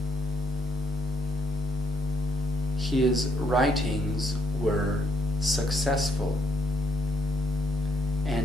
His writings were successful,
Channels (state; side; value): normal; both; correlation 0.72